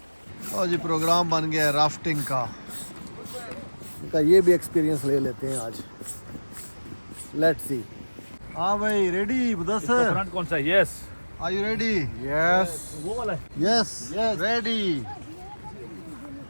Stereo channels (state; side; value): inverted; both; correlation -1.00